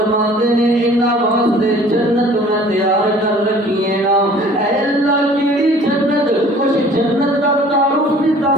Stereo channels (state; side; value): normal; both; correlation 0.51